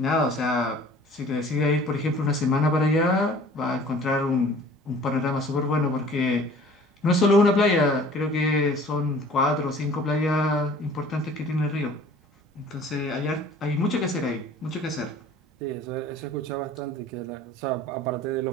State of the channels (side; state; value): both; normal; correlation 0.49